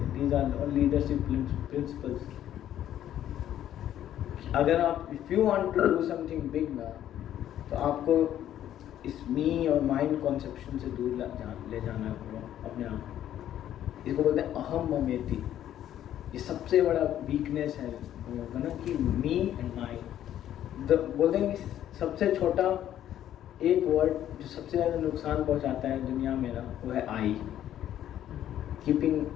These are leadership principles. अगर आप if you want to do something big ना, तो आपको इस मी और माइंड कॉन्सेप्शन से दूर ले जाना होगा अपने आप। इसको बोलते हैं अहम ममेति। ये सबसे बड़ा वीकनेस है ना कि मी एंड माइंड। बोलते हैं कि सबसे छोटा एक वर्ड जो सबसे ज़्यादा नुकसान पहुंचाता है दुनिया में ना, वो है I. Keeping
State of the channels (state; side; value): quieter; right; 11.4 dB